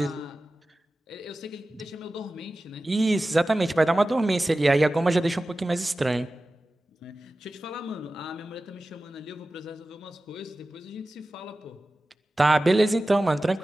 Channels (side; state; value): both; normal; correlation 0.95